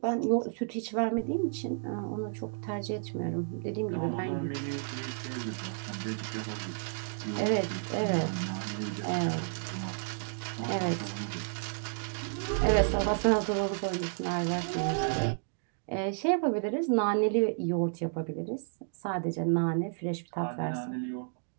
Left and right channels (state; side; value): silent; left; digital silence